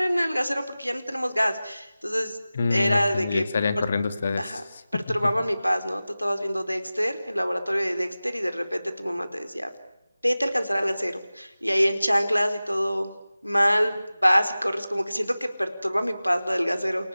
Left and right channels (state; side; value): inverted; both; correlation -0.96